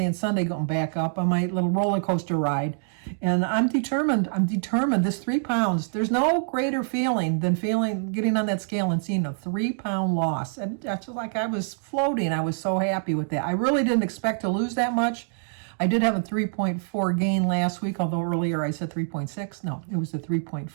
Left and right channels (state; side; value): silent; left; digital silence